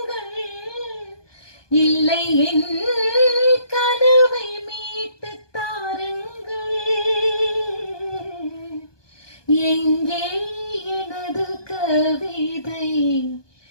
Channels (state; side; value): late; right; 1.2 ms